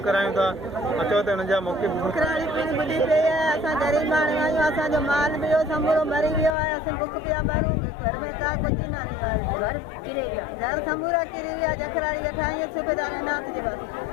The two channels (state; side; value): drops out; right; at 6.6 s